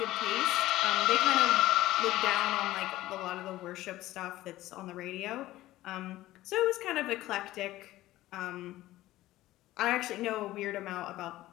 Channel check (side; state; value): right; quieter; 16.1 dB